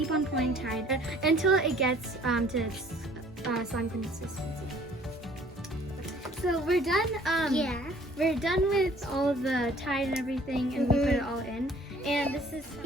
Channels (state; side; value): normal; both; correlation 0.55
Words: on pouring Tide until it gets to its slime consistency. So we're done. We're done with all of the Tide and everything, and we put it all in. And this is